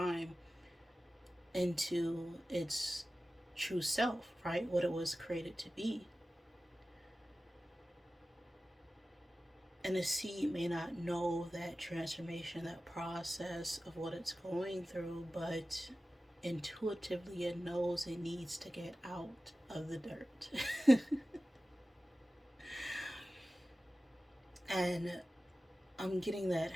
into its true self, right? What it was created to be. And the seed may not know that transformation, that process of what it's going through, but intuitively it knows it needs to get out of the dirt. And I'm getting that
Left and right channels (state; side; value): normal; both; correlation 0.95